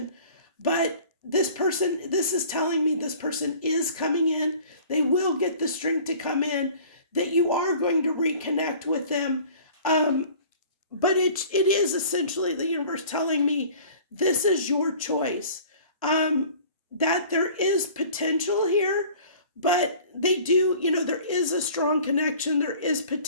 but this is telling me this person is coming in. They will get the strength to come in, that you are going to reconnect with them. But it is essentially the universe telling me this is your choice. That there is potential here, but they do, there is a strong connection, there is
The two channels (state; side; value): inverted; both; correlation -0.47